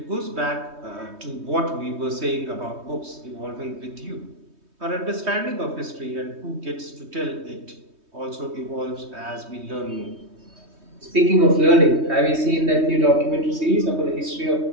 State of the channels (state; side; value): late; left; 3.2 ms